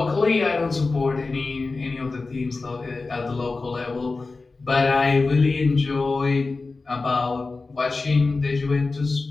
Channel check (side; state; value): right; quieter; 3.8 dB